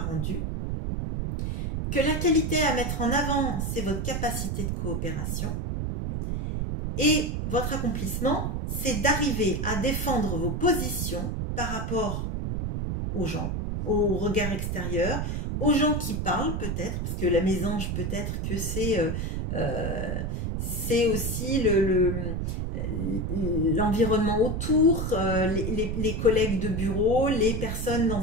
rendu. Que la qualité à mettre en avant, c'est votre capacité de coopération. Et votre accomplissement, c'est d'arriver à défendre vos positions par rapport aux gens, au regard extérieur, aux gens qui parlent peut-être, parce que la mésange peut-être que c'est aussi l'environnement autour, les collègues de bureau, les personnes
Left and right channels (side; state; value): right; noise; rumble, 1 dB below the sound